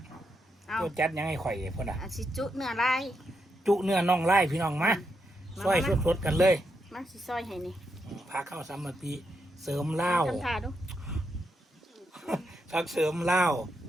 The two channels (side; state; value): both; normal; correlation 0.82